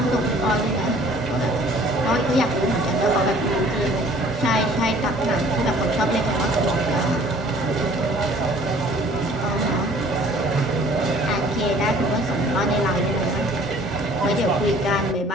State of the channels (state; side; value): normal; both; correlation 0.53